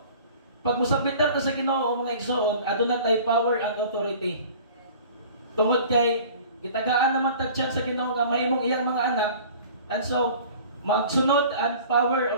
pag musabitan ta sa Ginoo mga igsoon, aduna tay power and authority. Tungod kay gitagaan naman tag chance sa Ginoo nga mahimong iyang mga anak, and so magsunod ang power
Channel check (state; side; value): inverted; both; correlation -0.45